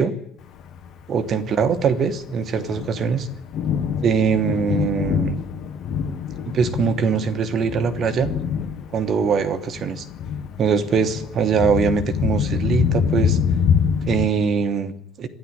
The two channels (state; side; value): normal; both; correlation 0.57